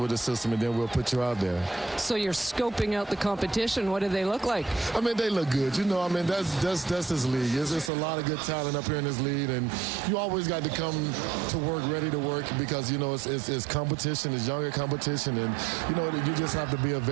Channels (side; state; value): left; drops out; at 7.9 s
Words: with the system, and then we'll put you out there. So you're scoping out the competition. What do they look like? I mean, they look good. That's this league. It's a lot of good talent up here in this league, and you always got to come to work ready to work because, it's competition. It's younger competition, and you just have to be a